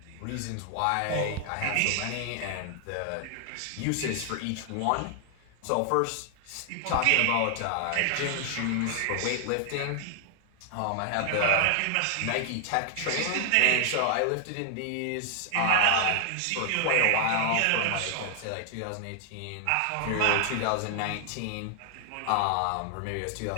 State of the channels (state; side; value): different; both; correlation 0.00